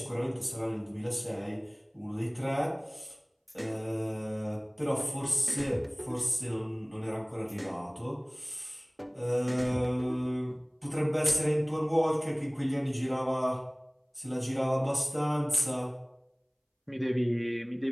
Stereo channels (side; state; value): both; identical; correlation 1.00